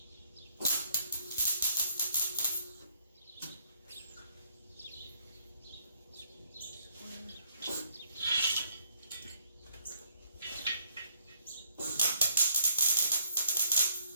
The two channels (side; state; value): both; inverted; correlation -0.67